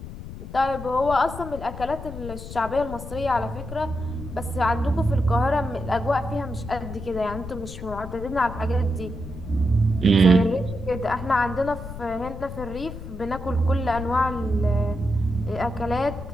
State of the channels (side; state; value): left; noise; rumble, 10 dB below the sound